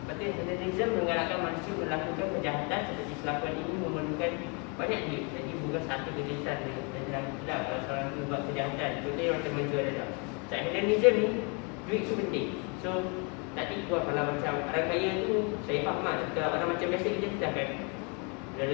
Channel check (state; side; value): quieter; right; 33.8 dB